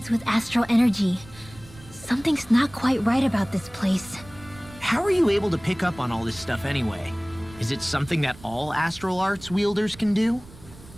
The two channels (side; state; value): right; noise; rumble, 20 dB below the sound